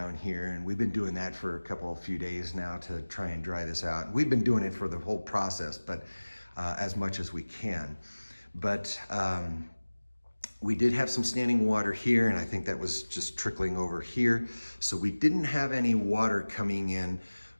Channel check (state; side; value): inverted; both; correlation -1.00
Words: here, and we've been doing that for a few days now to try and dry this out. We've been doing it for the whole process, but as much as we can. But we did have some standing water here, and I think that was just trickling over here. So we didn't have any water coming in